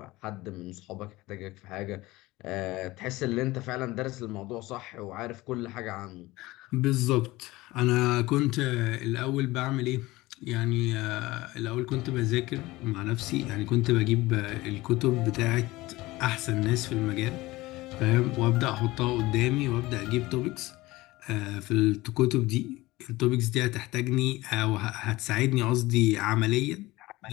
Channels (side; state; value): right; quieter; 19.6 dB